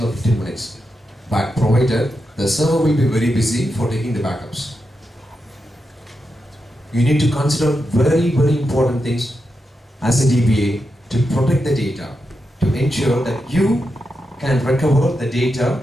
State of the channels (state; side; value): normal; both; correlation 0.87